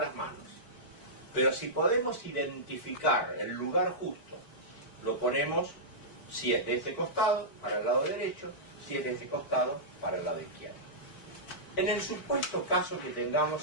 manos. Pero si podemos identificar el lugar justo, lo ponemos, si es de este costado, para el lado derecho, si es de este costado, para el lado izquierdo. En el supuesto caso que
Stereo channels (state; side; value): late; right; 4.5 ms